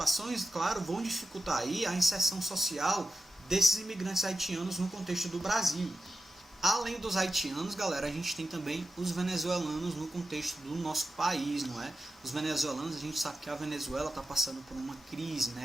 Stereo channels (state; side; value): normal; both; correlation 0.92